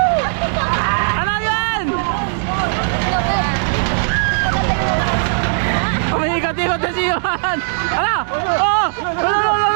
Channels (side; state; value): left; silent; digital silence